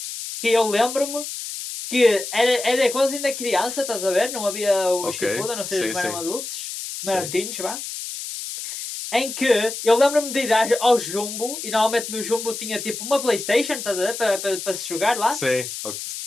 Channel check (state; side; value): noise; left; hiss, 7 dB below the sound